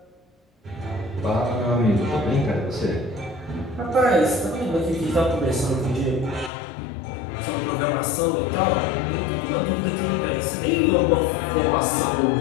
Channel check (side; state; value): right; drops out; at 6.5 s